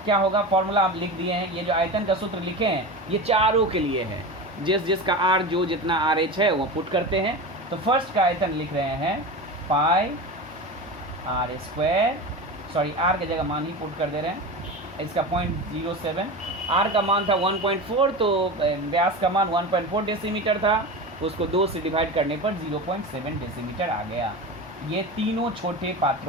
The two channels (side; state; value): both; normal; correlation 0.26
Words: क्या होगा, फॉर्मूला आप लिख दिए हैं। ये जो आयतन का सूत्र लिखे हैं ये चारों के लिए है, जिसका R जो जितना RH है वो पुट करते हैं। तो फर्स्ट का आयतन लिख रहे हैं पाई R स्क्वायर, सॉरी R की जगह मान ही पुट कर दे रहे हैं। इसका 0.07, R का मान था 1.4 तो व्यास का मान 1.4 डेसीमीटर था, उसको 2 से डिवाइड करने पर 0.7 डेसीमीटर आ गया। ये तीनों छोटे